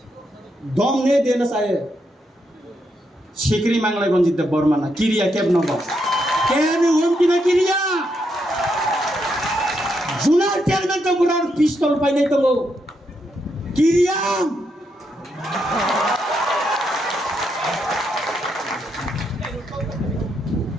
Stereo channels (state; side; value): normal; both; correlation 0.80